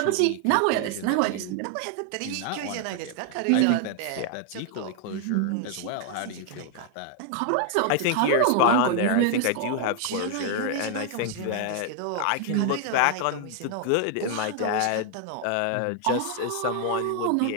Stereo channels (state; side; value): different; both; correlation 0.00